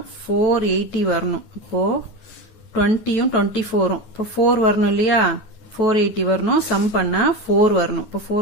480 வரணும். இப்போ 20யும் 24ம் இப்போ 4 வரணும் இல்லையா? 480 வரணும். சம் பண்ணா 4 வரணும். இப்போ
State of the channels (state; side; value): late; right; 9.6 ms